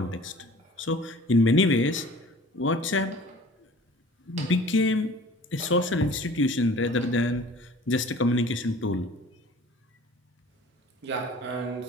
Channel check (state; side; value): normal; both; correlation 0.46